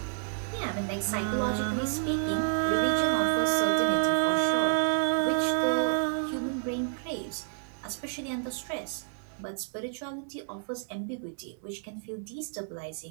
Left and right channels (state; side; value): silent; left; digital silence